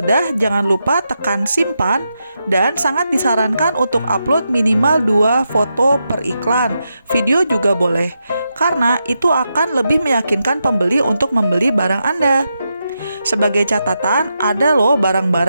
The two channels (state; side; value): inverted; both; correlation -0.86